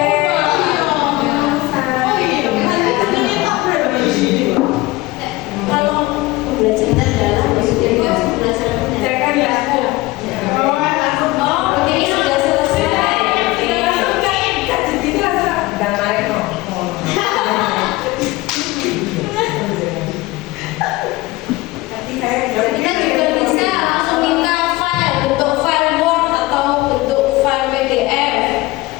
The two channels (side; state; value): right; quieter; 20.2 dB